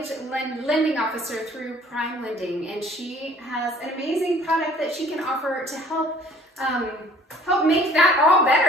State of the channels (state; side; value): normal; both; correlation 0.53